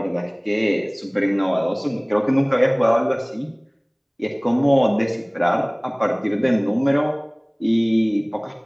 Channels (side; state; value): both; identical; correlation 1.00